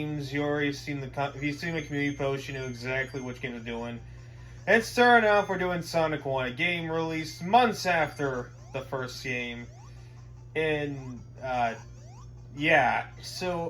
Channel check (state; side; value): identical; both; correlation 1.00